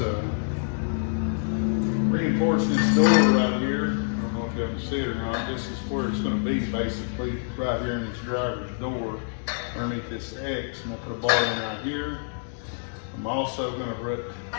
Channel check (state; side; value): silent; right; digital silence